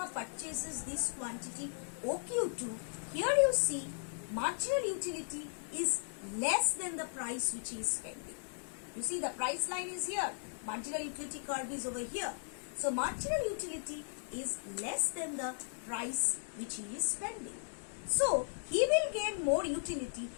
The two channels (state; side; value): silent; right; digital silence